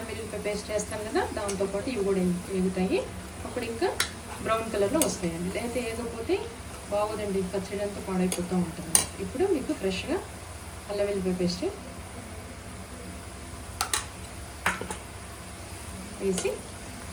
వెల్లుల్లిపాయ పేస్ట్ వేస్తాం కదా, దాంతోపాటు ఇవి కూడా ఎగుతాయి. అప్పుడు ఇంకా బ్రౌన్ కలర్లో వస్తాయండి. లేకపోతే ఏగకపోతే బాగోదండి, పచ్చడి అంతా పాడైపోతూ ఉంటుంది. ఇప్పుడు మీకు ఫ్రెష్గా అల్లం వెల్లుల్లిపాయ పేస్ట్ వేసి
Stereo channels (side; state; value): both; identical; correlation 1.00